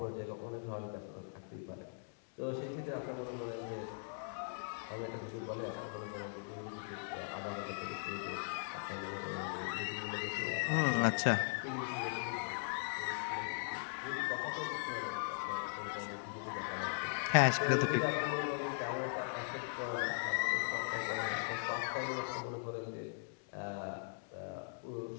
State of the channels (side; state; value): right; silent; digital silence